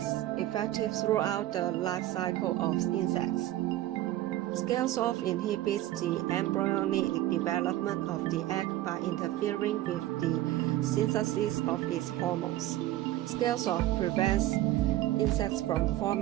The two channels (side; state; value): left; quieter; 14.9 dB